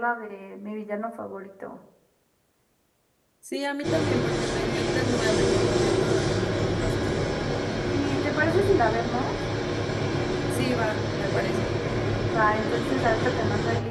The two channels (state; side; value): identical; both; correlation 1.00